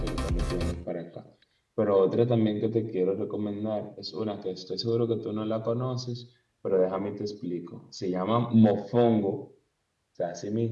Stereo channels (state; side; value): identical; both; correlation 1.00